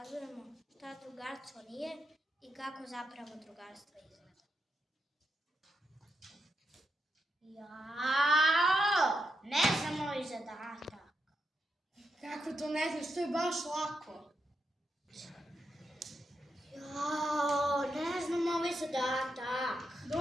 šta drugarstvo nije i kako zapravo drugarstvo izgleda. Jao, ne znam moj zadatak. Kako to ne znaš, to je baš lako. Jao, ne znam ovaj zadatak.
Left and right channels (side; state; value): both; normal; correlation 0.85